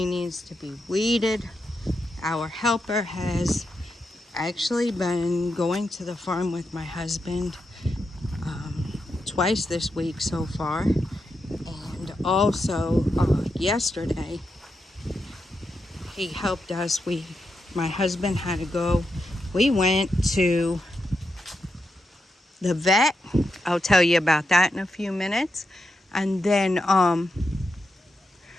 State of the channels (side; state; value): both; normal; correlation 0.86